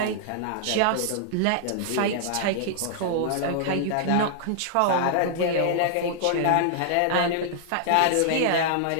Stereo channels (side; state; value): both; different; correlation -0.01